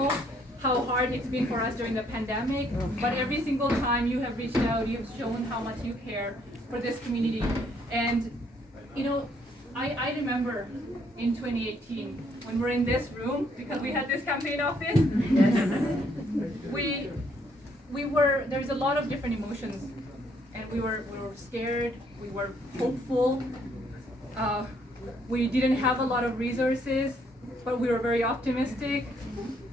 how hard it's been for us during the pandemic, but every single time you have reached out, you've shown how much you care for this community. And you know, I remember in 2018 when we're in this room, because we had this campaign office. There's a lot of different emotions, and we were scared, we were hopeful, we didn't have a lot of resources, but we were very optimistic.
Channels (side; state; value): both; normal; correlation 0.68